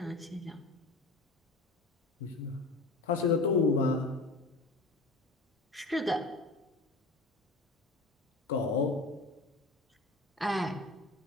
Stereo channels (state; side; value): quieter; right; 3.1 dB